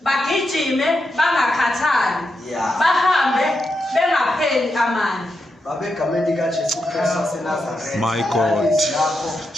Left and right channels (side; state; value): both; normal; correlation 0.86